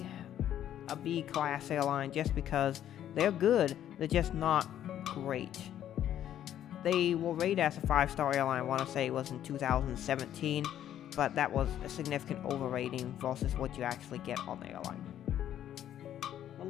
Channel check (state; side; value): quieter; right; 11.0 dB